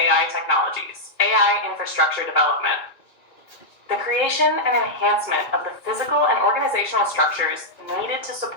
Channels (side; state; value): right; late; 2.4 ms